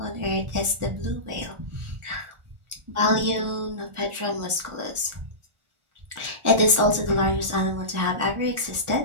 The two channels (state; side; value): late; left; 1.4 ms